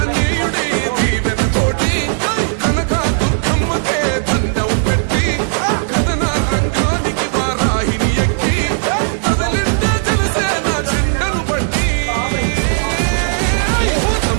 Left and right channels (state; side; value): silent; left; digital silence